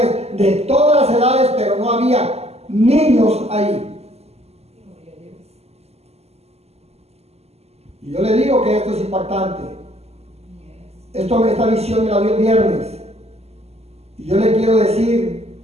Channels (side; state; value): left; late; 0.30 ms